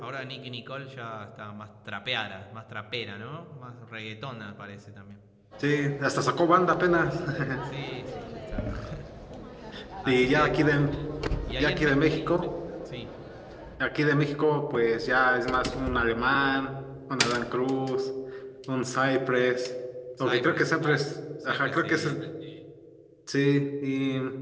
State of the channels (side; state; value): both; identical; correlation 1.00